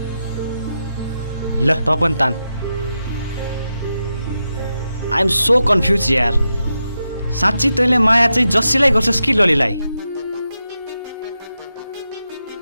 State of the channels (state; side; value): inverted; both; correlation -0.88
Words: ल त पनि तान। आई एम सो कन्फ्युज यार। साँच्ची तैँले माया चाहिँ जसैलाई गर्छस् कि ललीलाई?